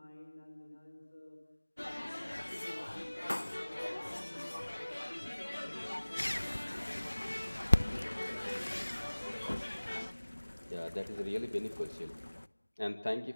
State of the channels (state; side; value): inverted; both; correlation -1.00